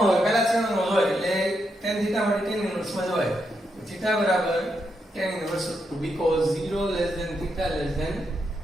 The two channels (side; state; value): both; normal; correlation 0.82